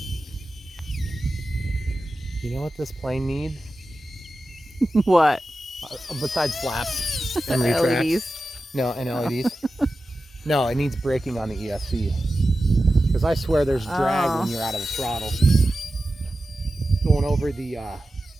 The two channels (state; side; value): normal; both; correlation 0.93